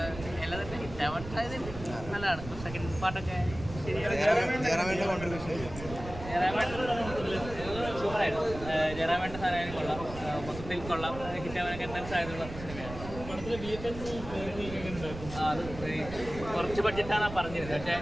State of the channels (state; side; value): noise; right; rumble, 11 dB below the sound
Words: എല്ലാം തന്നെ ഹിറ്റാവാൻ നല്ലതാണ്. സെക്കൻഡ് പാർട്ടൊക്കെ സൂപ്പറായിരുന്നു. ജയറാമേട്ടൻ്റെ സാധനം കൊള്ളാം, മൊത്തത്തിൽ കൊള്ളാം, ഹിറ്റാവാനൊക്കെ എന്തായാലും സാധ്യതയുള്ള സിനിമയാണ്. അത് കുറച്ച് ബഡ്ജറ്റാണ് പറഞ്ഞിരുന്നത്, പക്ഷേ